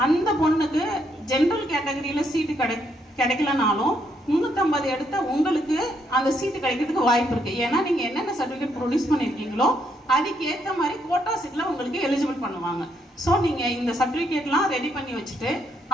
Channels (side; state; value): both; normal; correlation 0.74